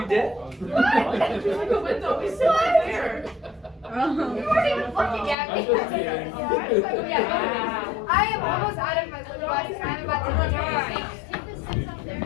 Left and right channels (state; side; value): drops out; right; at 5.4 s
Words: did? There's like a window. We still have there. You weren't even looking at me. I'm just kidding. Yeah. I am almost out of my lip gloss and I'm about to take the steps